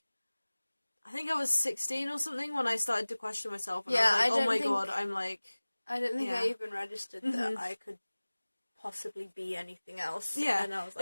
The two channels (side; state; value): both; inverted; correlation -1.00